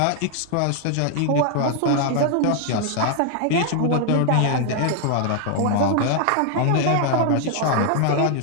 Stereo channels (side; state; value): both; different; correlation 0.00